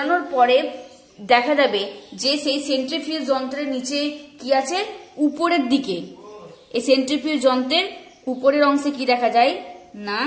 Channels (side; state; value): both; identical; correlation 1.00